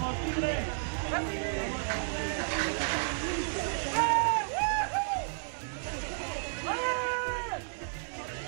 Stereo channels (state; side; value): silent; left; 56 dB below the other